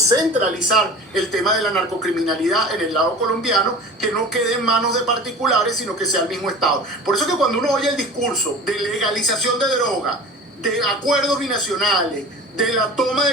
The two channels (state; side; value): normal; both; correlation 0.39